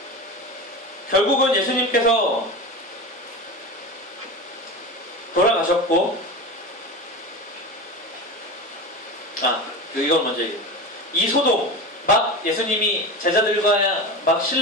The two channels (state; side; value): normal; both; correlation 0.27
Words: 결국은 예수님께서 돌아가셨고 이걸 먼저 얘기해요. 이 소동 막 예수님이 제자들과 막